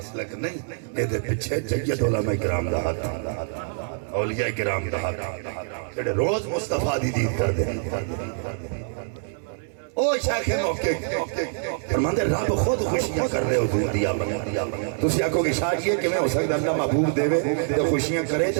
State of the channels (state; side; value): silent; left; digital silence